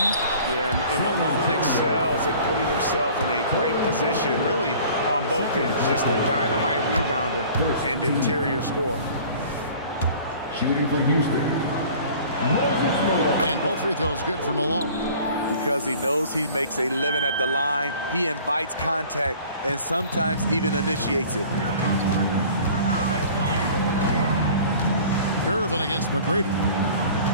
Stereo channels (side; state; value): both; inverted; correlation -0.47